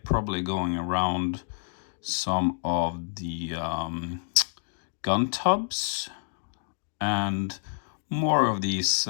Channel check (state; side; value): silent; right; 59 dB below the other